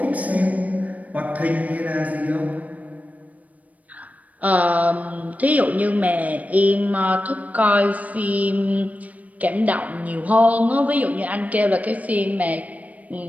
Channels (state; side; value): late; left; 0.071 ms